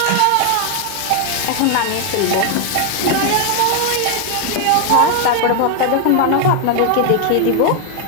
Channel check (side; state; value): both; different; correlation 0.00